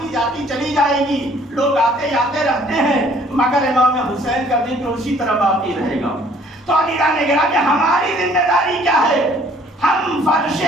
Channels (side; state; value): both; normal; correlation 0.58